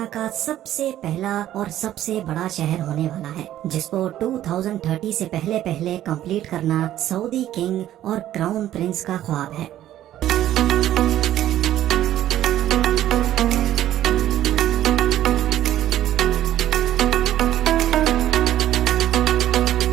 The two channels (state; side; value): quieter; left; 12.7 dB